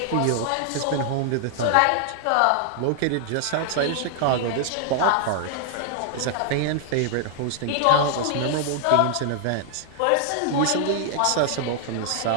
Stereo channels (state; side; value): different; both; correlation -0.01